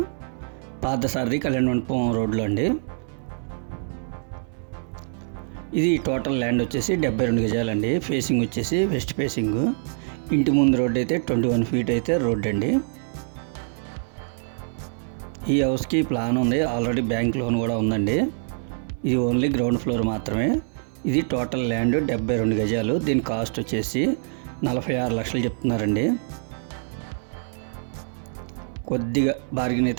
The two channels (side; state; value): left; silent; 62 dB below the other